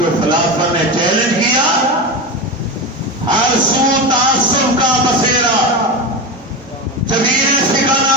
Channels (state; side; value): normal; both; correlation 0.21